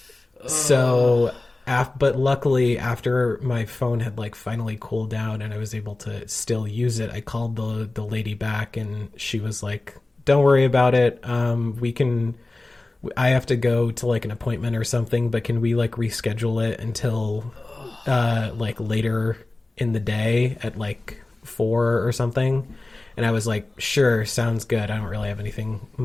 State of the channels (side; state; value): right; quieter; 3.0 dB